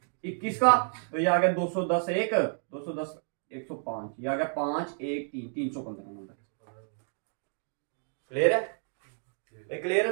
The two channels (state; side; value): silent; left; 58 dB below the other